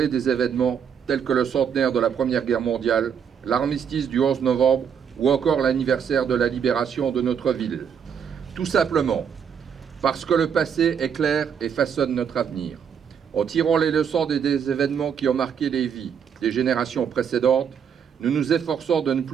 des événements tels que le centenaire de la Première Guerre mondiale, l'armistice du 11 novembre ou encore l'anniversaire de la libération de notre ville? Tout simplement parce que le passé est clair et façonne notre avenir. En tirant les leçons des événements qui ont marqué les vies des générations précédentes, nous nous efforçons de ne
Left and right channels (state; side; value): quieter; left; 7.6 dB